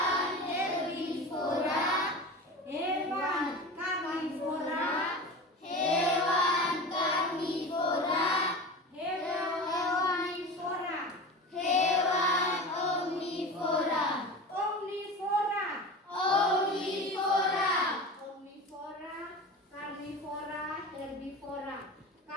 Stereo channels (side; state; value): both; normal; correlation 0.31